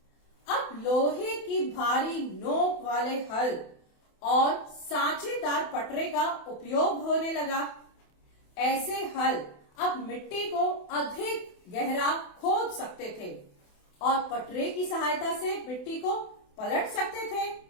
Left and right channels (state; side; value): late; right; 28 ms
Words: अब लोहे की भारी नोक वाले हल और सांचेदार पटरे का उपयोग होने लगा। ऐसे हल अब मिट्टी को अधिक गहरा खोद सकते थे और पटरे की सहायता से मिट्टी को पलट सकते थे।